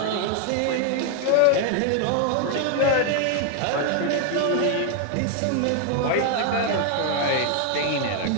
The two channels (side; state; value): both; different; correlation 0.00